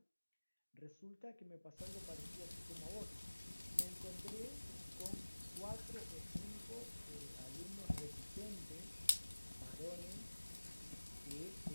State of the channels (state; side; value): inverted; both; correlation -1.00